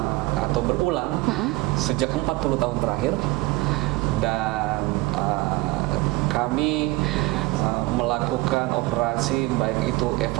atau berulang sejak 40 tahun terakhir, dan kami melakukan operasi baik itu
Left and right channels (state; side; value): quieter; left; 21.0 dB